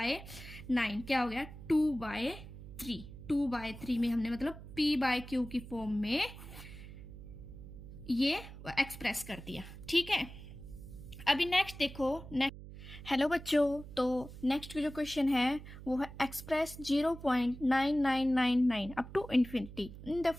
क्या हो गया, 2/3। 2/3 में हमने मतलब p/q की फॉर्म में ये एक्सप्रेस कर दिया। ठीक है, अभी नेक्स्ट देखो, हेलो बच्चों, तो नेक्स्ट जो क्वेश्चन है वो है express 0.9999 up to infinity in the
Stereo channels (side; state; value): right; noise; hum, 14 dB below the sound